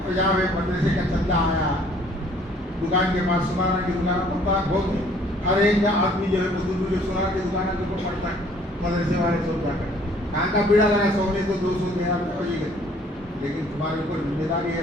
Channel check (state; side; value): normal; both; correlation 0.58